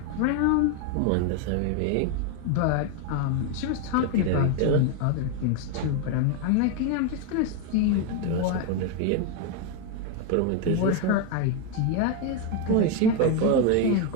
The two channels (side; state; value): both; different; correlation 0.01